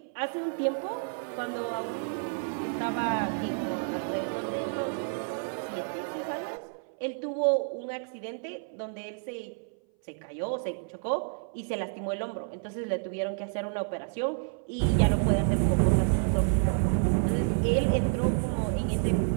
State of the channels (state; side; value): silent; left; 57 dB below the other